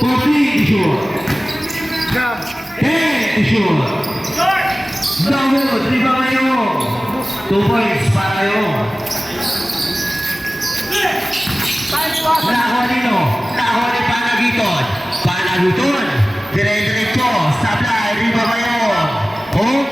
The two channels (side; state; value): both; normal; correlation 0.97